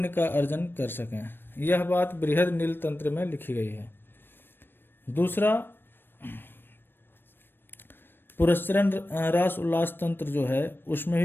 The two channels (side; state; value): right; late; 0.098 ms